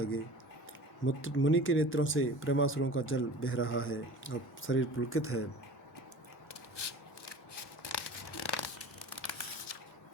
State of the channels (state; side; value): normal; both; correlation 0.40